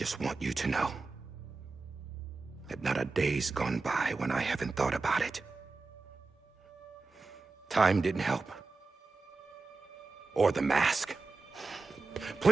want you to know that not a day's gone by when I haven't thought about it. Time didn't help. Or the mask.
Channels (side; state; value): left; quieter; 3.9 dB